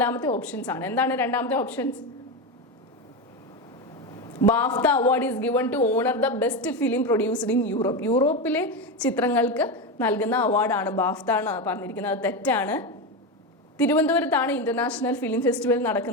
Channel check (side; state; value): both; normal; correlation 0.16